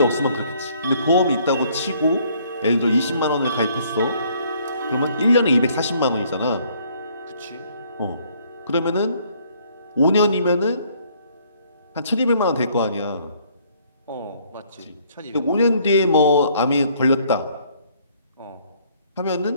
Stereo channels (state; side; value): inverted; both; correlation -0.63